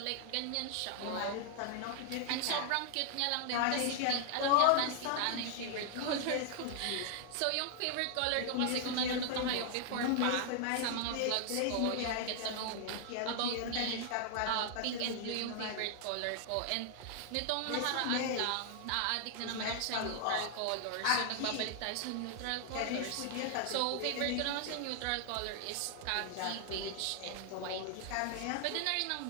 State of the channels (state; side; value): different; both; correlation 0.00